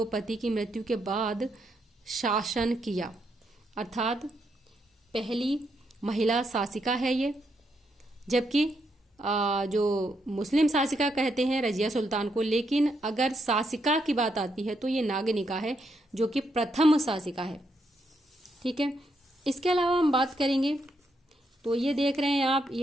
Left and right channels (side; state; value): both; normal; correlation 0.79